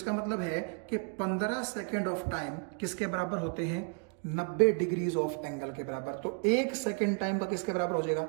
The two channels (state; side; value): quieter; left; 38.5 dB